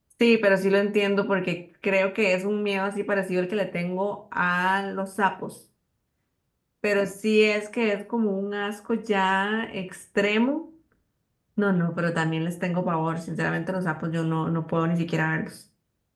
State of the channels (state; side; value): identical; both; correlation 1.00